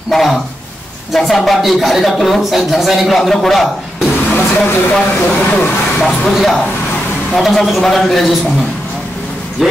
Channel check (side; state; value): both; normal; correlation 0.86